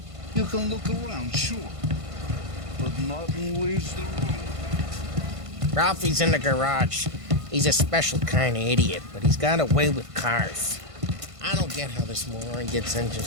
You can look around, sure. But nothing leaves the room. Ralphie's in the garage. He's a special kind of idiot, but he's got a way with cars. I don't get how this moron gets in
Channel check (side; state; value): left; late; 1.5 ms